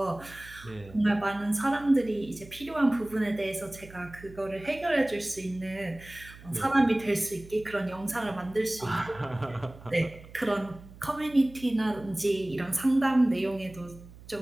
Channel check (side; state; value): right; noise; hum, 19 dB below the sound